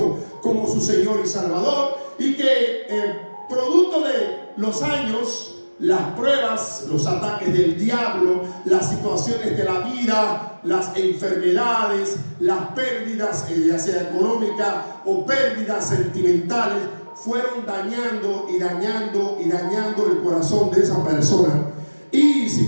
como su Señor y Salvador, y que producto de los años, las pruebas, los ataques del diablo, las situaciones de la vida, las enfermedades, las pérdidas, ya sea económicas o pérdidas sentimentales, fueron dañando y dañando y dañando el corazón de esa persona. Y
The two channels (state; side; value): inverted; both; correlation -1.00